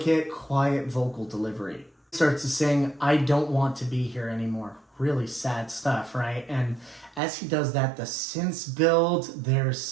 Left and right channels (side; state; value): left; drops out; at 7.2 s